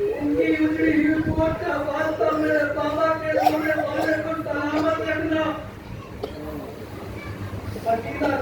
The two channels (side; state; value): both; identical; correlation 1.00